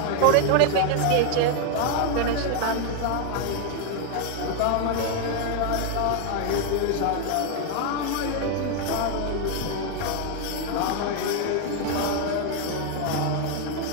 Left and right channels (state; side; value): different; both; correlation 0.01